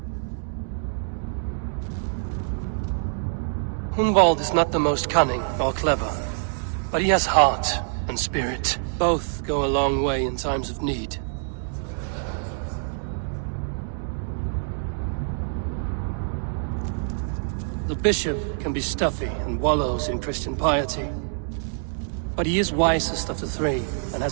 Hunwald is not the most cunning or clever, but he has heart and spirit. Both go a long way in times of need. The bishop can be stuffy and wallows in Christian piety. But he is wisest of the 3, and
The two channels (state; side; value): silent; left; digital silence